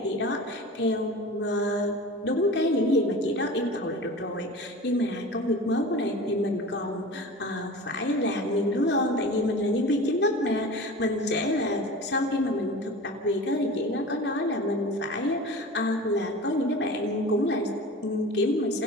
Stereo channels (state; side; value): normal; both; correlation 0.36